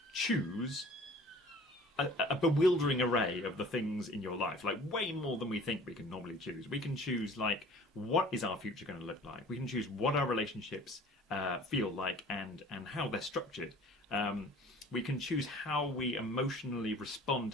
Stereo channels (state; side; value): normal; both; correlation 0.48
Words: choose a bewildering array of the things in your life, like way more than we think we can normally choose. We can choose, like, what is our future going to look like? We can choose what our relationships feel like and how they're structured. We can choose how we emotionally respond